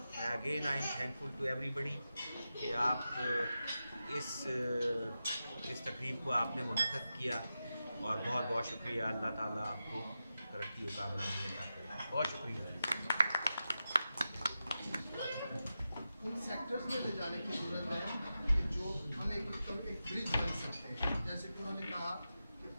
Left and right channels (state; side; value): inverted; both; correlation -0.91